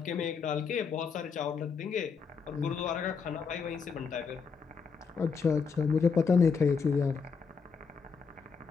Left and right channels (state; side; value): quieter; right; 5.5 dB